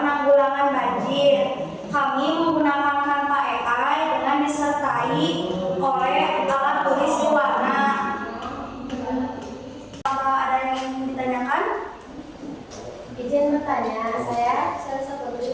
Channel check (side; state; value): both; identical; correlation 1.00